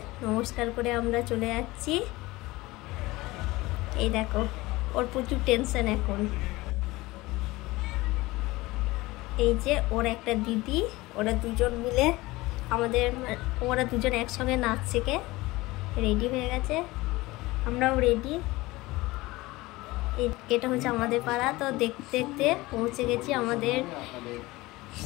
নমস্কার করে আমরা চলে যাচ্ছি। এই দেখো, ওর প্রচুর টেনশন এখন। এই যে ওর একটা দিদি, ওরা দুজন মিলে ওরা দুজন একসঙ্গে নাচ শেখে। রেডি হয়ে গেছে, আমরাও রেডি। এটা হচ্ছে আমাদের পাড়া। তো দেখতে দেখতে পৌঁছে গেছি আমাদের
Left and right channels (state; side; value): quieter; right; 20.3 dB